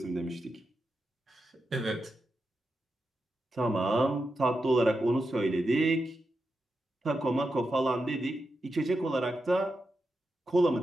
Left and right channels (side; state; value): both; normal; correlation 0.88